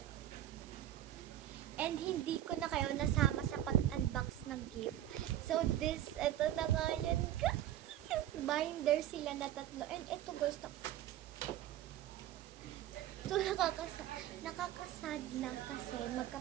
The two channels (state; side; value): quieter; left; 12.6 dB